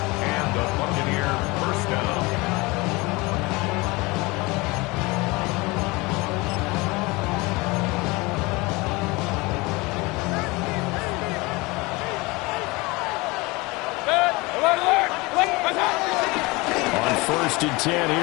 And the Buccaneer first down. On first and 10,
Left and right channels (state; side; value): quieter; right; 24.0 dB